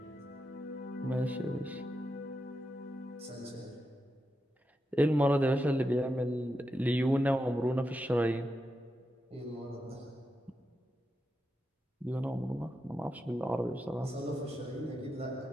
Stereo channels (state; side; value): normal; both; correlation 0.87